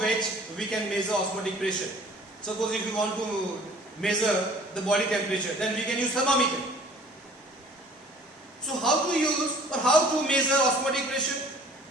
which we can measure osmotic pressure. Suppose if we want to measure the body temperature, then we can use thermometer. So how to use or how to measure osmotic pressure?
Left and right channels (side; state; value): both; normal; correlation 0.51